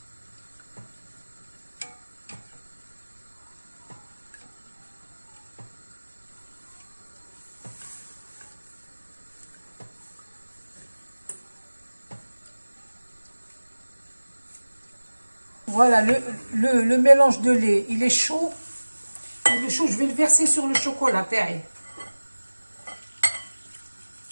Voilà, le mélange de lait, il est chaud. Il est chaud, je vais le verser sur le chocolat, pareil.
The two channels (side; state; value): both; inverted; correlation -1.00